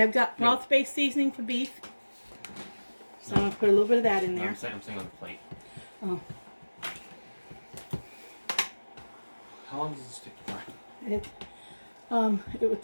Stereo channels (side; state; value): both; inverted; correlation -1.00